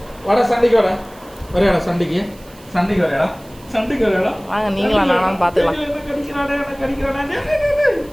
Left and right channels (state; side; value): noise; right; hiss, 25 dB below the sound